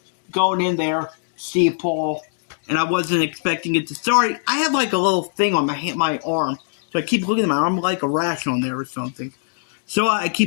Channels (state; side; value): silent; right; digital silence